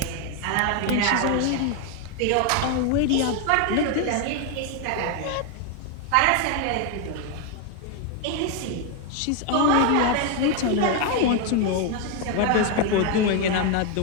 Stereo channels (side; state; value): both; different; correlation 0.01